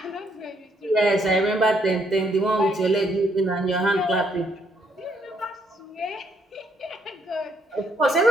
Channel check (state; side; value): normal; both; correlation 0.71